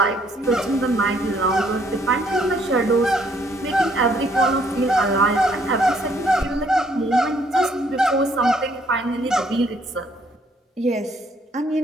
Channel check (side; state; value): both; normal; correlation 0.67